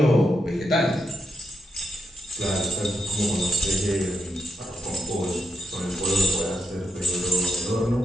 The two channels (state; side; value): normal; both; correlation 0.82